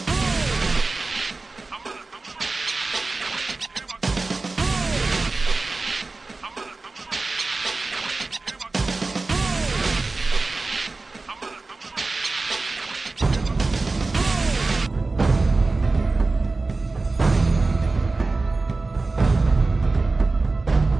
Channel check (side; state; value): left; quieter; 3.5 dB